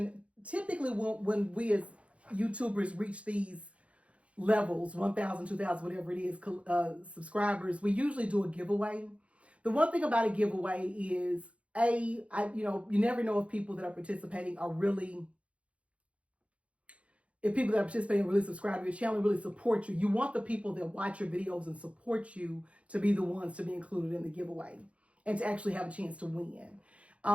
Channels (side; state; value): left; late; 0.063 ms